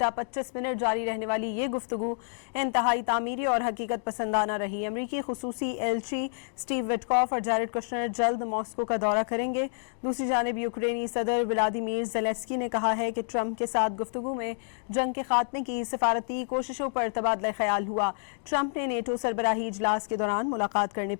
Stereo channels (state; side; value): silent; right; digital silence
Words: 25 منٹ جاری رہنے والی یہ گفتگو انتہائی تعمیری اور حقیقت پسندانہ رہی۔ امریکی خصوصی ایلچی سٹیو وٹکوف اور جیرڈ کشنر جلد ماسکو کا دورہ کریں گے۔ دوسری جانب یوکرینی صدر ولادیمیر زیلنسکی نے کہا ہے کہ ٹرمپ کے ساتھ گفتگو میں جنگ کے خاتمے کی سفارتی کوششوں پر تبادلہ خیال ہوا۔ ٹرمپ نے نیٹو سربراہی اجلاس کے دوران ملاقات کرنے